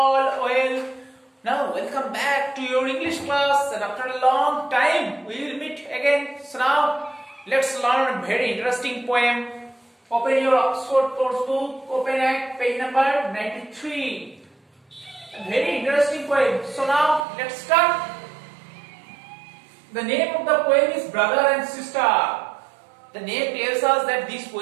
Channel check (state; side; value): drops out; left; at 17.2 s